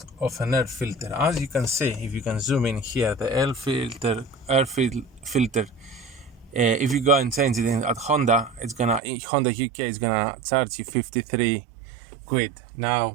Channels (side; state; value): left; drops out; at 9.0 s